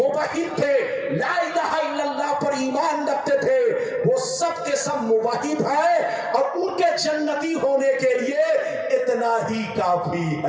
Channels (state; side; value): identical; both; correlation 1.00